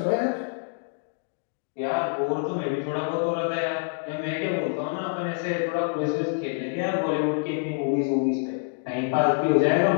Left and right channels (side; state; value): right; silent; 61 dB below the other